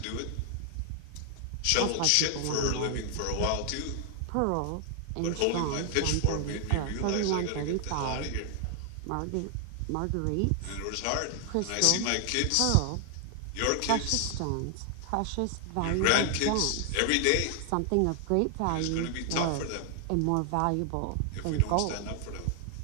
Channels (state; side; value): different; both; correlation 0.00